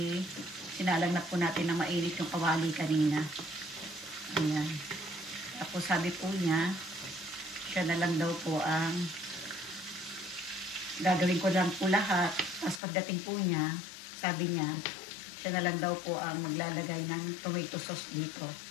sinalang na po natin na mainit yung kawali kanina. Ayan. Tapos sabi po niya, siya na lang daw po ang gagawin ko lang po lahat. Tapos pagdating po niya, sabi niya, siya na lang daw po ang maglalagay ng tomato sauce dito.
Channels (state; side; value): drops out; right; at 12.8 s